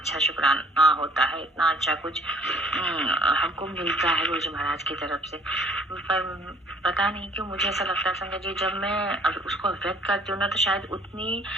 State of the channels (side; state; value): both; normal; correlation 0.56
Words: शुक्राना होता है, इतना अच्छा कुछ हमको मिलता है गुरु जी महाराज की तरफ से। पर पता नहीं क्यों मुझे ऐसा लगता है संगत जी, जब मैं उसको व्यक्त करती हूँ ना तो शायद उतनी